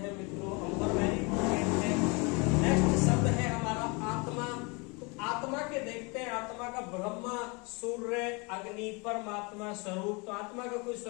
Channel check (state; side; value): quieter; right; 29.5 dB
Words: मित्रों। अंबर वेरी इंपोर्टेंट है। नेक्स्ट शब्द है हमारा आत्मा। तो आत्मा के देखते हैं, आत्मा का ब्रह्मा, सूर्य, अग्नि, परमात्मा, स्वरूप। तो आत्मा का कोई